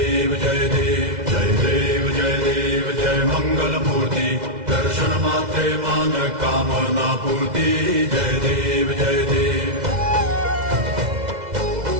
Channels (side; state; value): left; late; 2.0 ms